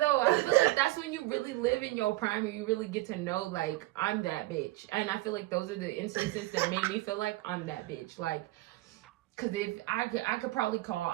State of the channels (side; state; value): left; quieter; 18.8 dB